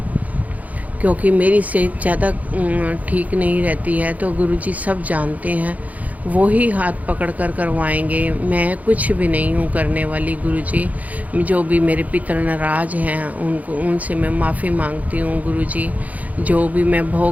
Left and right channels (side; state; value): left; late; 0.075 ms